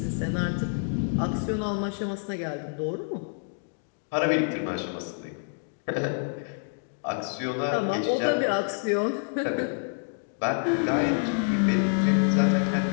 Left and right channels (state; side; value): silent; right; 60 dB below the other